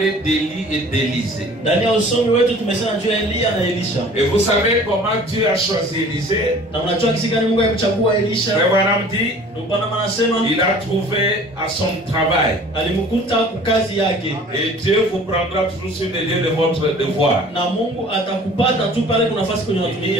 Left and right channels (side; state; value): both; normal; correlation 0.48